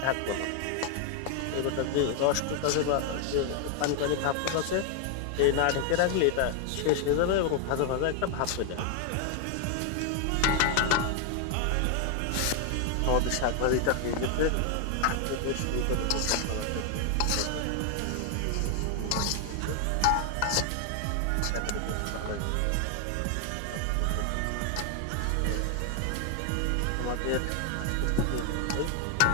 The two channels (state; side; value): different; both; correlation 0.00